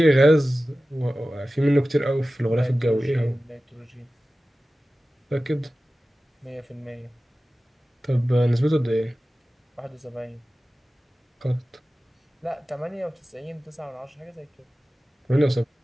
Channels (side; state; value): both; normal; correlation 0.96